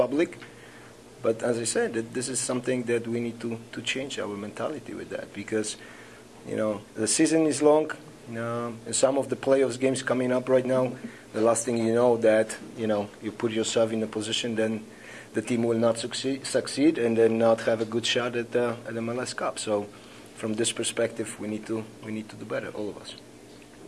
But as I said, this is something that we need to change our mentality with that, because the season is long. Some of the playoffs games coming up right now, the last thing that you put yourself in a position, then the team will not succeed and then not have a good shot at the MLS Cup. So from this perspective, we need to do better, all of us.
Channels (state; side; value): identical; both; correlation 1.00